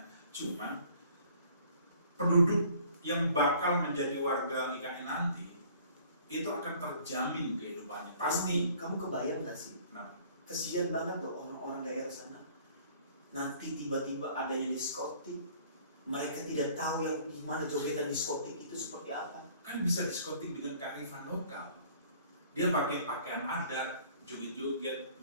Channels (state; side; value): inverted; both; correlation -0.55